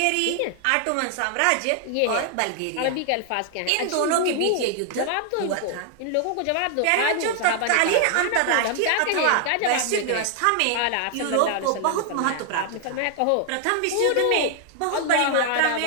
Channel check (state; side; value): different; both; correlation 0.00